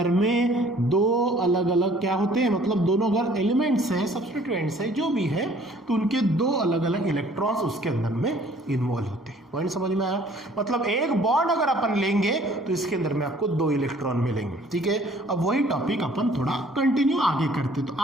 में दो अलग अलग क्या होते हैं, मतलब दोनों अगर एलिमेंट्स हैं, सब्स्टिट्यूएंट्स हैं, जो भी है, तो उनके दो अलग अलग इलेक्ट्रॉन्स उसके अंदर में इन्वॉल्व होते हैं। पॉइंट समझ में आया? मतलब एक बॉन्ड अगर अपन लेंगे तो इसके अंदर में आपको दो इलेक्ट्रॉन मिलेंगे। ठीक है, अब वही टॉपिक अपन थोड़ा कंटिन्यू आगे करते। तो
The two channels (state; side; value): normal; both; correlation 0.56